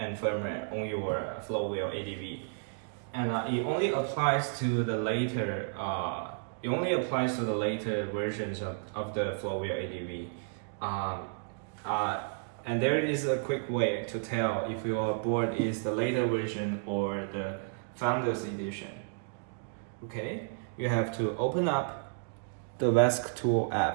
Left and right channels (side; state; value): left; silent; digital silence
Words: firmware on your Floatwheel ADV, and it only applies to the later versions of the Floatwheel ADV. And there is a quick way to tell if your board is the later version or the Founders Edition. Okay, you have to open up the VESC Tool